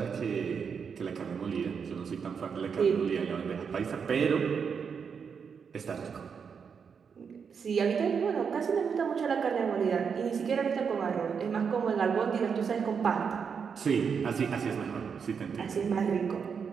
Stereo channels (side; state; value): left; quieter; 6.4 dB